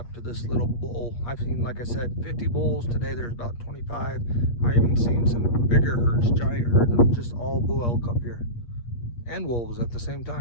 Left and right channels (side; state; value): right; late; 8.5 ms